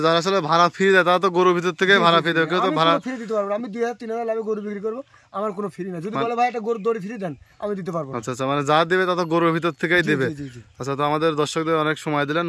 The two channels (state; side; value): identical; both; correlation 1.00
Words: যারা আসলে ভাড়া ফ্রি দেয় তারা তো গরুর ভিতর থেকে ভাড়া ফ্রি দেবে, কেউ তো ভাড়া ফ্রি দিতে পারবো। আমি 2,000-3,000 লাভে গরু বিক্রি করবো, আমার কোনো ফ্রি না। যদি বলে ভাই একটা গরুর দড়ি ফ্রি দেন, আমি দিতে পারবো। আচ্ছা আচ্ছা, মানে যা দেবে তা তো গরুর ভিতর থেকেই দেবে। জি জি। আচ্ছা, তো আমাদের দর্শকদের অনেক সময় দিলেন,